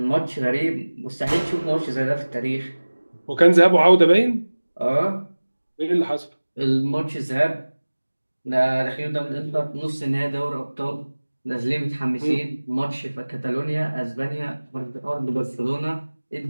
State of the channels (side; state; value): both; inverted; correlation -1.00